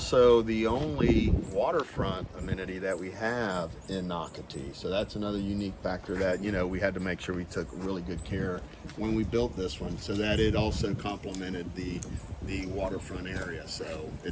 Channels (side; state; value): both; identical; correlation 1.00